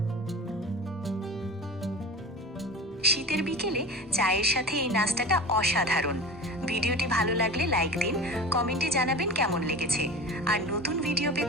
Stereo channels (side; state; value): both; normal; correlation 0.33